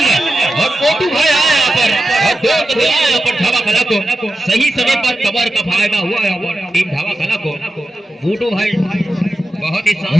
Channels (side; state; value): both; normal; correlation 0.91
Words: और मोटू भाई आया यहाँ पर, और 2 कदम आया यहाँ पर ढाबा कला को, सही समय पर कवर का फायदा हुआ है टीम ढाबा कला को। मोटू भाई बहुत ही